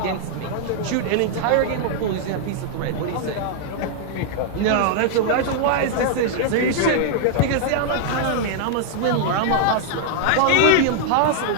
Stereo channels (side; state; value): both; different; correlation -0.01